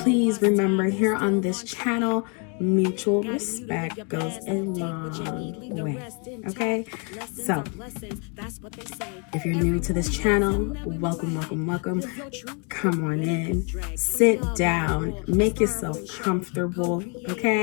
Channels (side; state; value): right; quieter; 35.9 dB